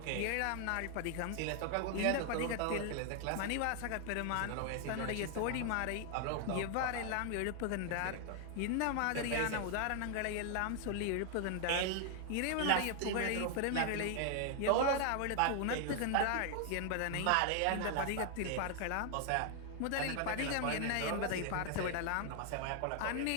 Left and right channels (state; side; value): different; both; correlation 0.00